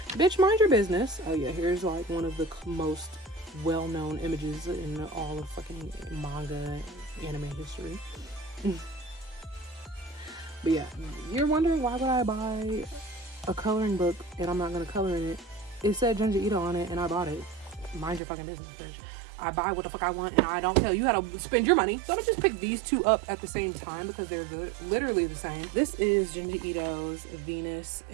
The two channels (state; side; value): drops out; left; at 18.2 s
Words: Bitch, mind your business. Oh yeah, here's like one of the most well-known images in all of fucking manga anime history. But yeah, you're wondering, why would I buy a coloring book and I'm not gonna color in it? It said Junji Ito on it and I bought it. Mind your fucking business, bitch. I buy what the fuck I want and I don't tell you how to spend your money. So I don't just pick these two up at the same time because they're literally the same. This is Junji Ito's Venus